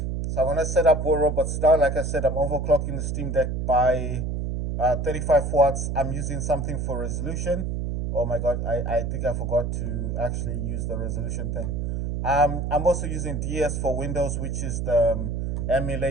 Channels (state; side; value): noise; right; hum, 2 dB below the sound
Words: So I'm gonna set up War Robots now. Like I said, I'm overclocking the Steam Deck by 35 watts. I'm using something for resolution. Oh my god, I think I forgot to actually use the resolution thing. I'm also using DS for Windows, which is the